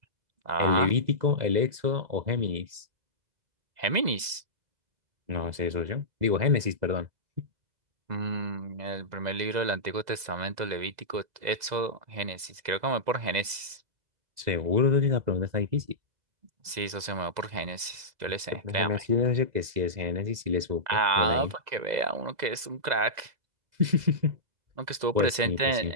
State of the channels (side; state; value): left; late; 2.0 ms